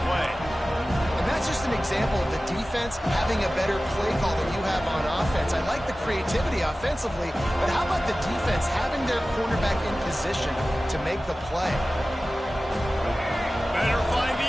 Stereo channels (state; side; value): normal; both; correlation 0.96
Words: play. And that's just an example of the defense having a better play call than you have on offense. I like the creativity offensively, but how about the defense having their cornerback in position to make the play? Better find the